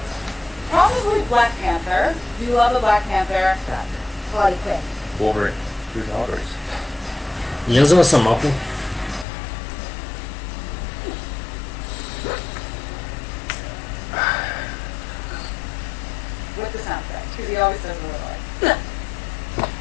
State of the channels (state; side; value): drops out; right; at 9.2 s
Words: Probably Black Panther. Do you love a Black Panther? Harley Quinn. Wolverine. Who's Audrey's? Я за Росомаху. he always says a little like.